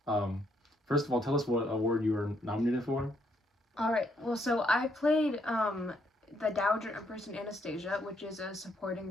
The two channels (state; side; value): normal; both; correlation 0.73